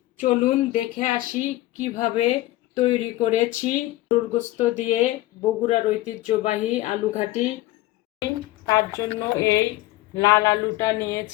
চলুন দেখে আসি কিভাবে তৈরি করেছি গরুর গোশত দিয়ে বগুড়ার ঐতিহ্যবাহী আলু ঘাটি। তার জন্য এই লাল আলুটা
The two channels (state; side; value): quieter; right; 17.1 dB